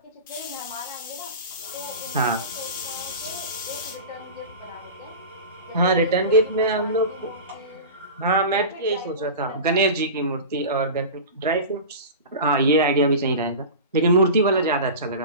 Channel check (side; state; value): both; inverted; correlation -0.30